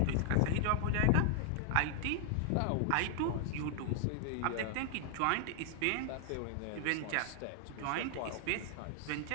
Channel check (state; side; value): different; both; correlation 0.00